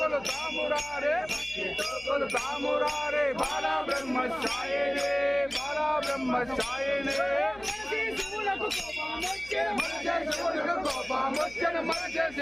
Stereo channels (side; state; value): left; noise; hum, 21 dB below the sound